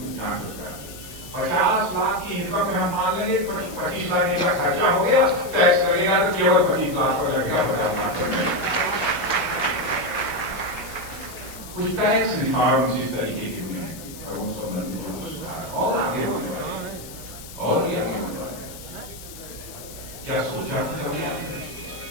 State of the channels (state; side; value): noise; left; hiss, 15 dB below the sound